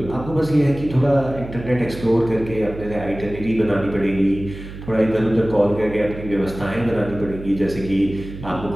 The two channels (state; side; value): noise; right; hum, 12 dB below the sound